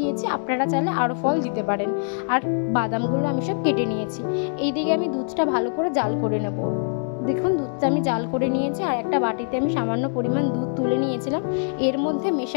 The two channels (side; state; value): right; silent; digital silence